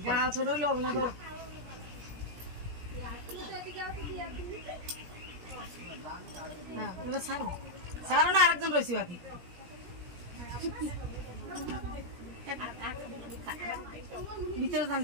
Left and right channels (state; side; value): late; left; 17 ms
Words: গাছ ছোট হবে না তো। সারো না, আরেকজন রয়েছি বাকি। ভিতরে